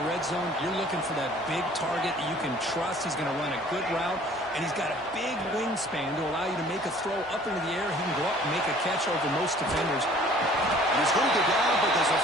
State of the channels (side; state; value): both; normal; correlation 0.52